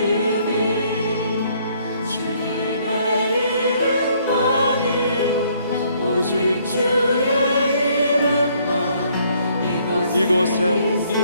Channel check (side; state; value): both; inverted; correlation -0.65